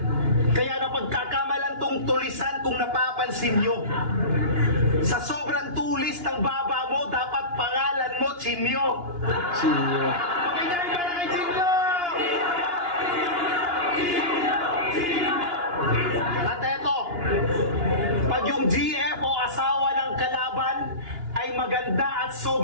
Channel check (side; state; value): left; late; 2.9 ms